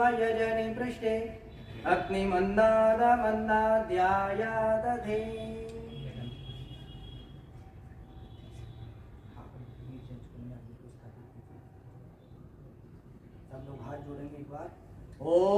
पृष्ठे अग्निमन्नादमन्नाद्याया दधे। सब लोग हाथ जोड़ेंगे एक बार।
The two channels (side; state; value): both; identical; correlation 1.00